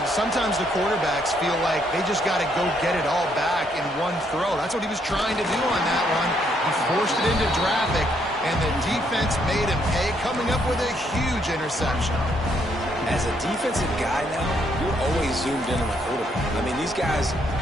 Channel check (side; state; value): both; normal; correlation 0.72